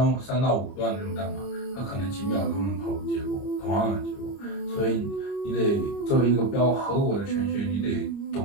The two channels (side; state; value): right; late; 30 ms